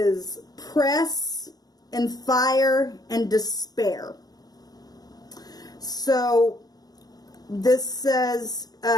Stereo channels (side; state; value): right; late; 0.19 ms